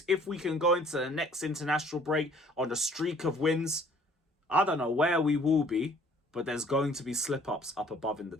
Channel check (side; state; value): both; normal; correlation 0.56